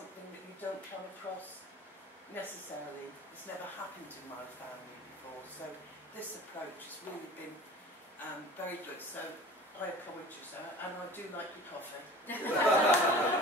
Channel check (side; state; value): both; normal; correlation 0.41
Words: that you don't come across necessarily. It's never happened in my family before, so this approach has really been very good. So I applaud you, sir, and I do like your coffee.